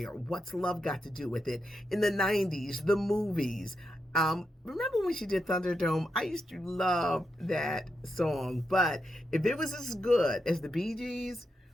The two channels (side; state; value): both; normal; correlation 0.85